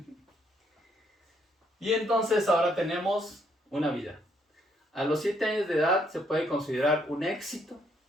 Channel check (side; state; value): both; normal; correlation 0.71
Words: Y entonces ahora tenemos una vida. A los 7 años de edad se puede considerar un éxito